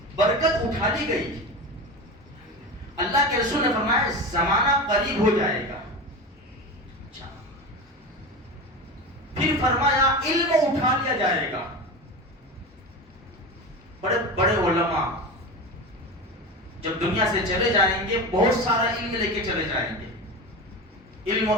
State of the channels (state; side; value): normal; both; correlation 0.26